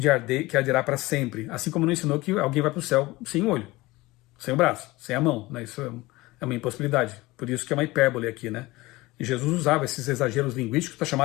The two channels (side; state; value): right; quieter; 20.3 dB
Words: que arderá para sempre, assim como não ensinou que alguém vai para o céu sem o olho, sem o braço, sem a mão, né? Isso é uma impossibilidade. Por isso que é uma hipérbole aqui, né? E Jesus usava esses exageros linguísticos para chamar